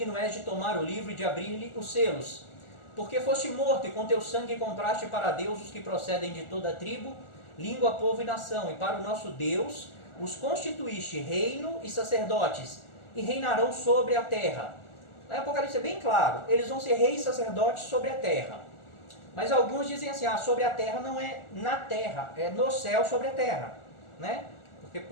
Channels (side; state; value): right; late; 1.4 ms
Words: és de tomar o livro e de abrir-lhe os selos. Porque foste morto, e com teu sangue compraste para Deus os que procedem de toda a tribo, língua, povo e nação. E para o nosso Deus os constituíste reino e sacerdotes, e reinarão sobre a terra. Lá em Apocalipse é bem claro, eles vão ser reis e sacerdotes sobre a terra. Mas alguns dizem assim, sobre a terra não é na terra, é no céu sobre a terra, né? Porque